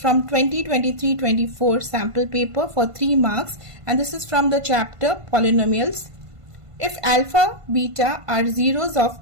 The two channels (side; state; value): left; late; 1.5 ms